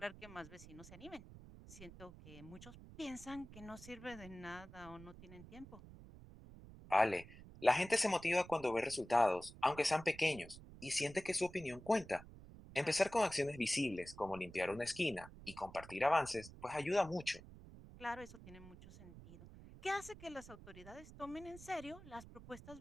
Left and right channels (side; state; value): right; noise; rumble, 16 dB below the sound